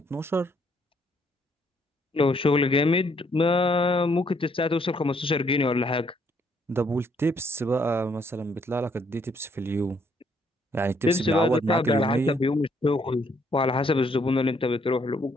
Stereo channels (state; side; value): normal; both; correlation 0.69